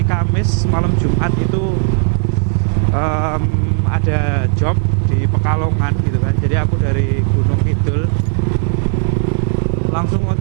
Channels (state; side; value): silent; left; 58 dB below the other